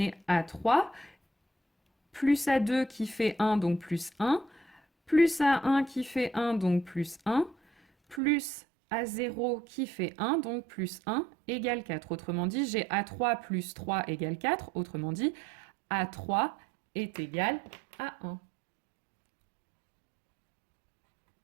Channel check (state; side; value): drops out; left; at 8.2 s